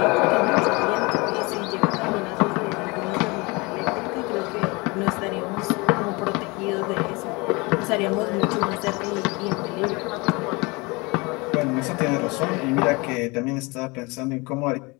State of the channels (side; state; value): right; quieter; 26.3 dB